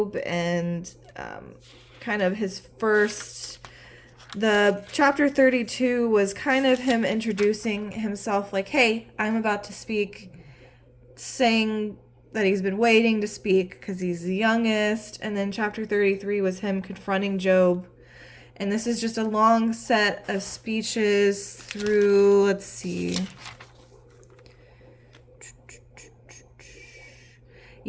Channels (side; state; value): both; identical; correlation 1.00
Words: and kind of his first. The chapter 32 was kind of him introducing himself, like, hey, I'm about to speak, saying that he's been waiting to speak because he's the youngest. And then chapter 33 was him confronting Job. And this is just a long set of speeches through, let's see.